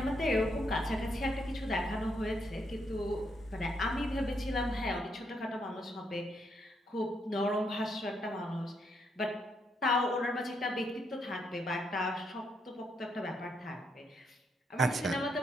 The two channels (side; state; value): both; normal; correlation 0.76